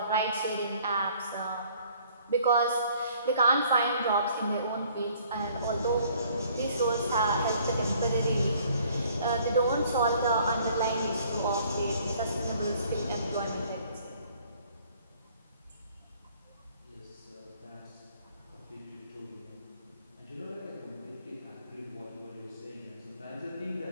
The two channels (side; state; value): both; inverted; correlation -0.59